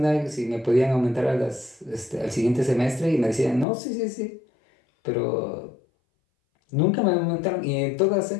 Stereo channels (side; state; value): right; drops out; at 3.7 s